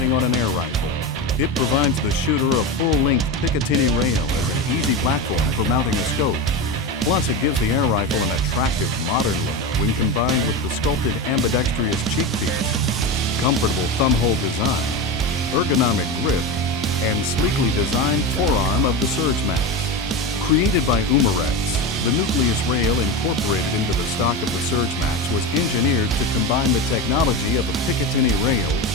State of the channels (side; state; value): both; normal; correlation 0.21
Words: on an air rifle. It provides the shooter a full-length Picatinny rail as an easy platform for mounting a scope. Plus, it gives the air rifle an attractive, modern look when combined with the sculpted ambidextrous cheek piece, comfortable thumbhole design, ergonomic grip, and sleekly designed forearm of the Surge Max. Created by Umarex, the Nucleus rail incorporated into the stock of the Surge Max was engineered to combine the technology of a Picatinny rail